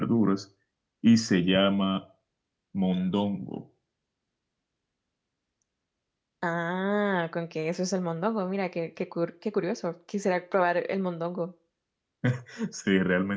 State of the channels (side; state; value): both; identical; correlation 1.00